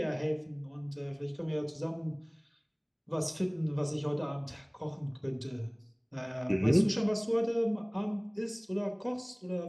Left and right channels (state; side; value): identical; both; correlation 1.00